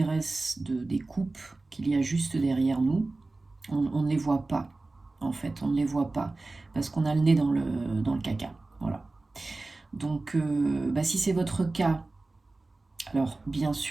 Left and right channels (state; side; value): quieter; left; 3.2 dB